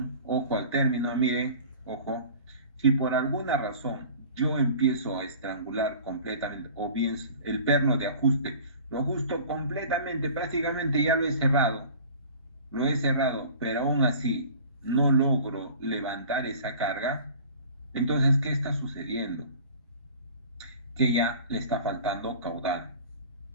ojo al término, miren, ojo, si por alguna razón yo empiezo a estrangular completamente, o bien el perno de ajuste, lo ajusto completamente, prácticamente ya lo he cerrado, pero aún así no logro levantar esa carga, entonces, ¿qué está sucediendo? Que ya le está faltando caudal.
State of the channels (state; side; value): inverted; both; correlation -0.43